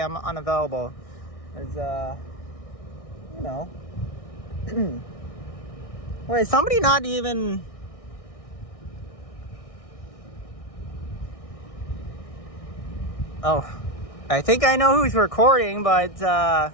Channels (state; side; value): late; right; 1.6 ms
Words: I'm unavailable. Cause, you know. Wait, somebody not even... Oh, I think I know who's recording, but,